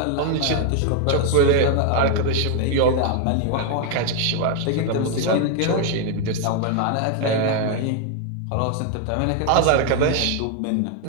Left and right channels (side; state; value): both; different; correlation 0.00